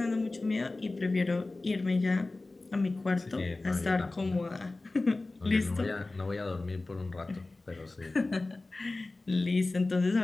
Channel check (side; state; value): right; quieter; 3.2 dB